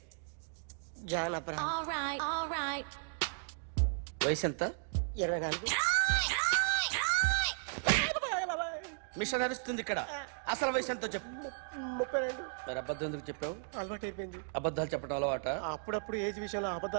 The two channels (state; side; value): silent; left; digital silence